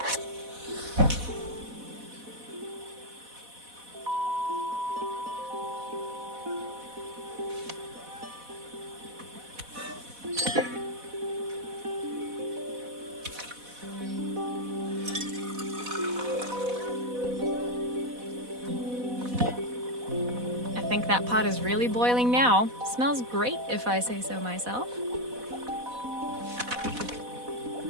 I think that pot is really boiling now. Smells great if I say so myself.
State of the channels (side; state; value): left; late; 4.1 ms